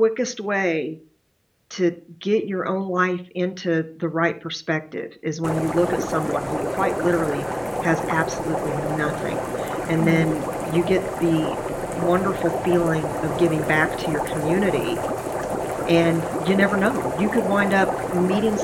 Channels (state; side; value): identical; both; correlation 1.00